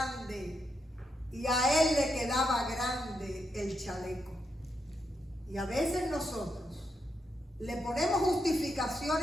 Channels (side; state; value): both; normal; correlation 0.82